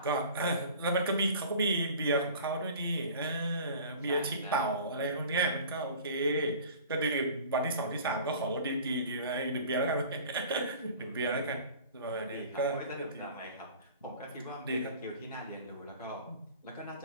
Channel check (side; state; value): both; inverted; correlation -0.43